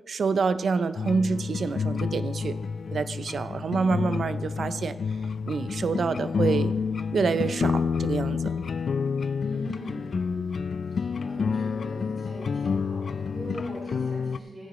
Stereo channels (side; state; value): both; normal; correlation 0.83